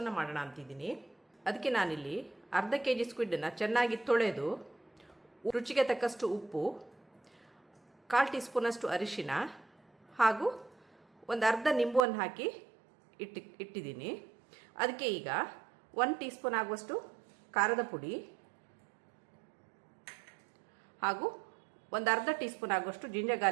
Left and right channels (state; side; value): drops out; left; at 12.1 s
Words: ಮಾಡೋಣ ಅಂತಿದ್ದೀನಿ. ಅದಕ್ಕೆ ನಾನಿಲ್ಲಿ ಅರ್ಧ kg ಸ್ಕ್ವಿಡ್ಡನ್ನು ಚೆನ್ನಾಗಿ ತೊಳೆದು ರುಚಿಗೆ ತಕ್ಕಷ್ಟು ಉಪ್ಪು, 1/4 ಟೀ ಸ್ಪೂನಷ್ಟು ಅರಿಶಿನ ಹಾಗೂ ಒಂದು ಅರ್ಧ ನಿಂಬುವನ್ನು ಹಾಕಿ ಇಟ್ಟಿದ್ದೀನಿ. ಅದಕ್ಕೆ ಈಗ 1 ಟೀ ಸ್ಪೂನ್ ಆಗುವಷ್ಟು ಖಾರದ ಪುಡಿ ಹಾಗೂ ಒಂದು ಅರ್ಧ ಟೀ ಸ್ಪೂನ್ ಆಗುವಷ್ಟು ಜಿಂಜರ್